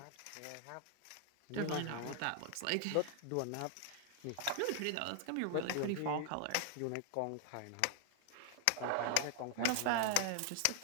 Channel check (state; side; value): different; both; correlation 0.00